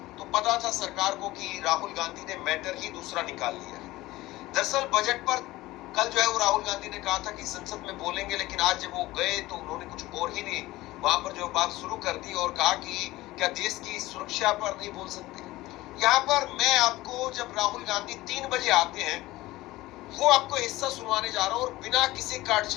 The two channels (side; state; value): right; quieter; 18.2 dB